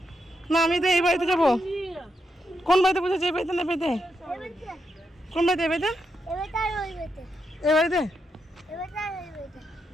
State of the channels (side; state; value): both; normal; correlation 0.83